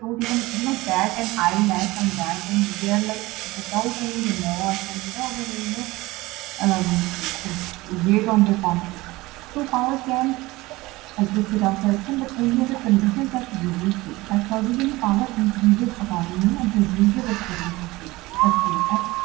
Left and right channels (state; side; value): quieter; left; 20.3 dB